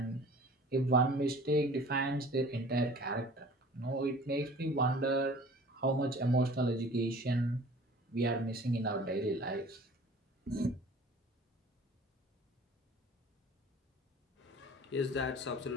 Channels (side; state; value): both; normal; correlation 0.46